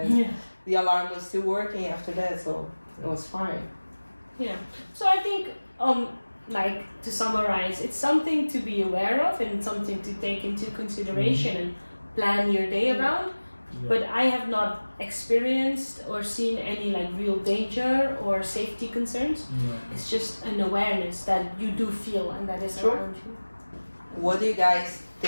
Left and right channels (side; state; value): both; inverted; correlation -1.00